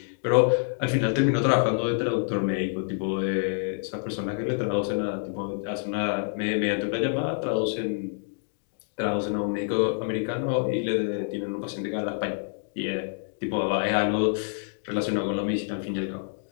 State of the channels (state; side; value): silent; right; digital silence